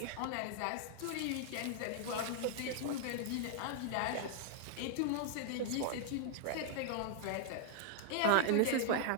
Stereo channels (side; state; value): both; different; correlation -0.01